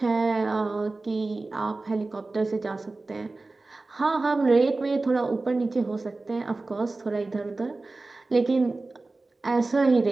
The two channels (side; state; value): left; quieter; 3.3 dB